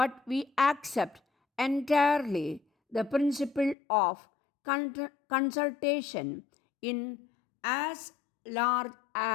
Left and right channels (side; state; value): right; drops out; at 3.8 s